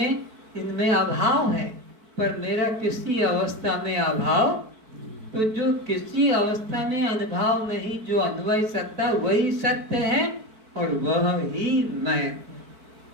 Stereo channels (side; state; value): left; late; 4.5 ms